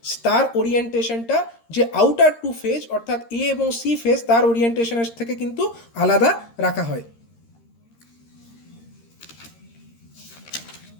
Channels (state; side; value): late; right; 13 ms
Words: তার ওরিয়েন্টেশনটা যে আউটার 2 ফেজ অর্থাৎ A এবং C ফেজ তার ওরিয়েন্টেশনের থেকে কিন্তু আলাদা রাখা হয়।